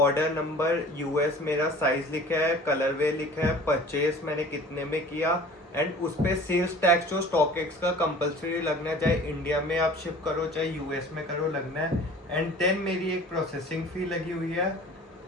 नंबर यूएस मेरा साइज लिखा है, कलरवे लिखा है, परचेज मैंने कितने में किया। एंड उस पर सेल्स टैक्स जो स्टॉकएक्स का कंपलसरी लगना है, चाहे इंडिया में आप शिप करो चाहे यूएस में करो लगना है। एंड देन मेरी एक प्रोसेसिंग फ़ी लगी हुई है।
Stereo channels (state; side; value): normal; both; correlation 0.45